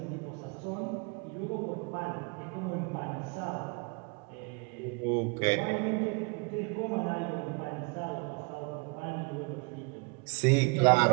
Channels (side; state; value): left; quieter; 32.6 dB